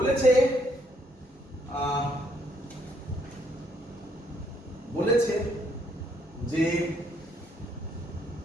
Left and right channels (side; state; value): both; normal; correlation 0.70